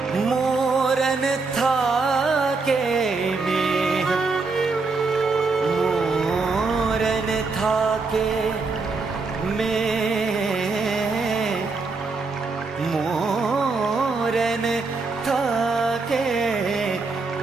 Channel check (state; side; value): quieter; left; 4.1 dB